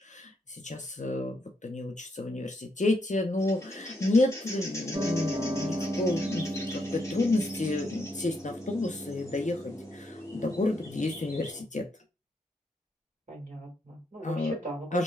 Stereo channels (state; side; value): normal; both; correlation 0.78